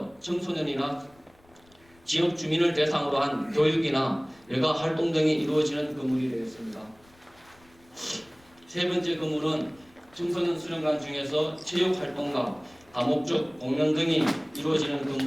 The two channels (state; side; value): noise; left; rumble, 30 dB below the sound